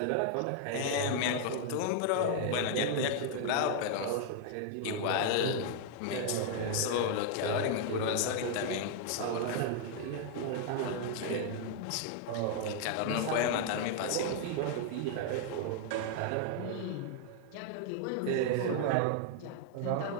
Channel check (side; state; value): both; different; correlation 0.00